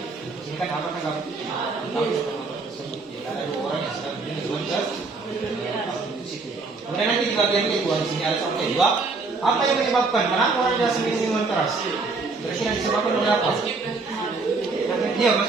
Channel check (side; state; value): left; quieter; 3.9 dB